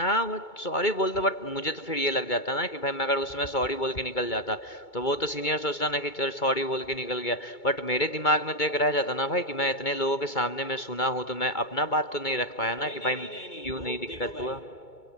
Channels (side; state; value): right; late; 2.2 ms